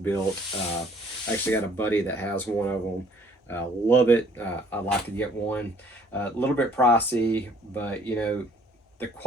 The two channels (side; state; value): both; normal; correlation 0.59